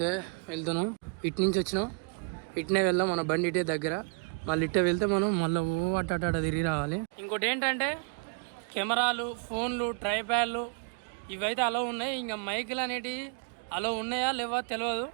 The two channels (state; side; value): quieter; left; 34.6 dB